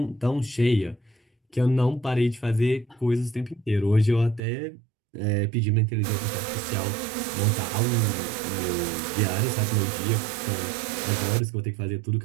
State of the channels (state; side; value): drops out; left; at 4.4 s